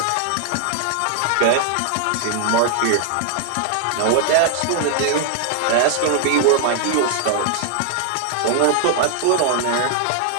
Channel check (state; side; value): different; both; correlation 0.00